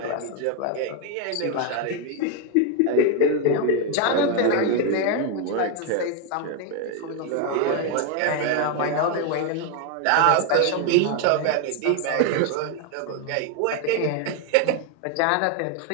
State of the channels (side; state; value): both; different; correlation 0.01